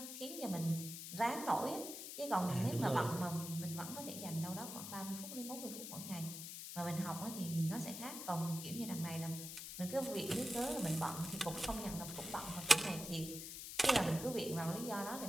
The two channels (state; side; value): noise; left; hiss, 8 dB below the sound